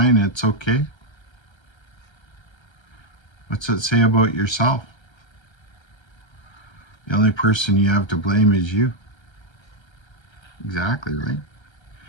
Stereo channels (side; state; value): right; late; 1.3 ms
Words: it's okay. What's it say about yourself? The only person you have to blame is you. Exactly, right?